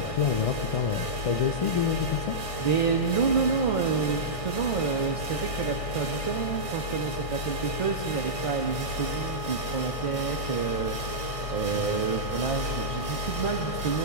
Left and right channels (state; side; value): late; right; 1.6 ms